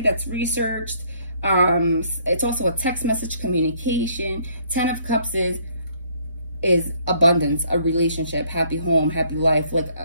that's researched. It's also a text message communication. 10 of Cups is abundance, a relationship, happy home, happy life, like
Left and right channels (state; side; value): inverted; both; correlation -0.65